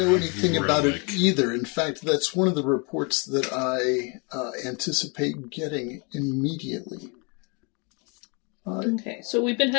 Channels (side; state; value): right; quieter; 33.0 dB